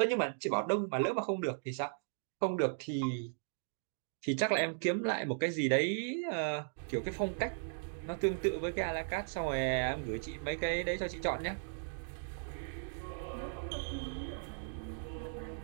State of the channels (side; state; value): left; silent; digital silence